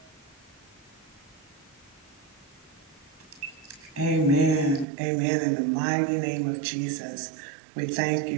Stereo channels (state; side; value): drops out; left; at 4.9 s